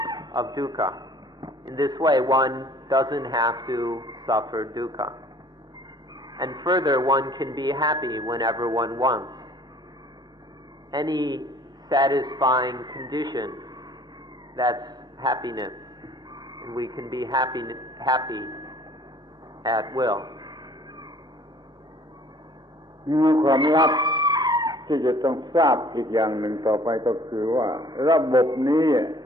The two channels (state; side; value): normal; both; correlation 0.54